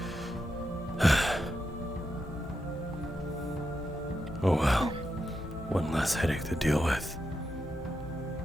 Oh well, one less headache to deal with.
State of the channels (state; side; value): normal; both; correlation 0.86